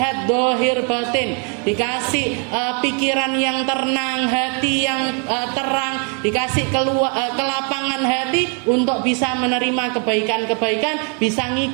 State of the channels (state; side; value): quieter; left; 37.7 dB